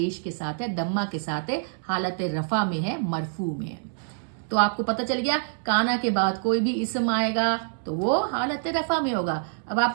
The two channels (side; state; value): left; silent; 61 dB below the other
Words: کے ساتھ ہے, دمہ کے ساتھ ہے, حالت رفع میں ہے, مرفوع میں ہے. تو آپ کو پتہ چل گیا کانا کے بعد کوئی بھی اسم آئے گا تو وہ حالت رفع میں ہوگا. اب آپ